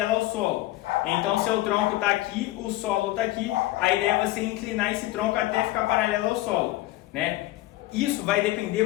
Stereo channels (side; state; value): right; quieter; 17.2 dB